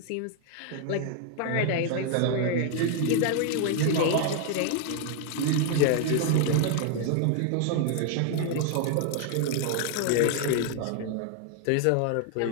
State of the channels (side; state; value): both; different; correlation 0.00